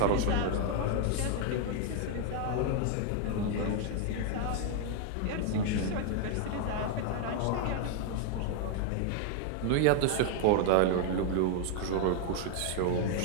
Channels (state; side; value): different; both; correlation 0.00